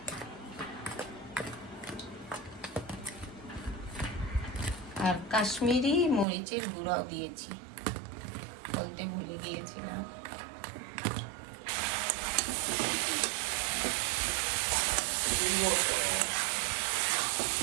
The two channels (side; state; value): left; drops out; at 6.2 s